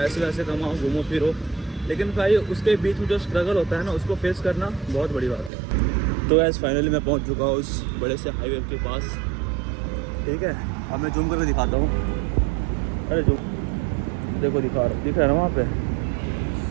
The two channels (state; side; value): drops out; left; at 5.5 s